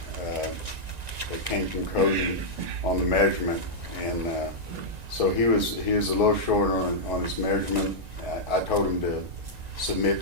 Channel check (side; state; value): left; late; 1.9 ms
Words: came from Cody on the measurement. And so he was a little short on his measurement. I told him to